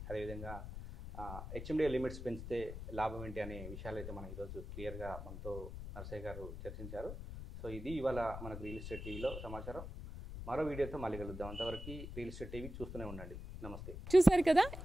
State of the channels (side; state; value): left; noise; rumble, 9 dB below the sound